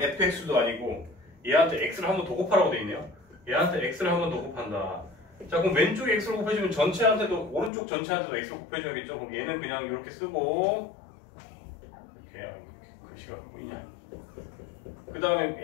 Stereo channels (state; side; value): drops out; right; at 7.7 s